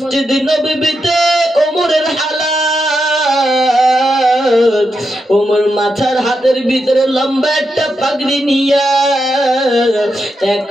নববীতে ওমরের হালাত, ওমর মাথার হাতের ভিতরে লম্বা একটা পাগড়ি নিয়া, এক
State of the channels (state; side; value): normal; both; correlation 0.85